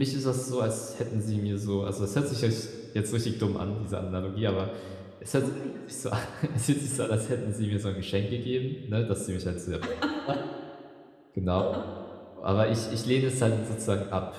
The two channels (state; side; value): identical; both; correlation 1.00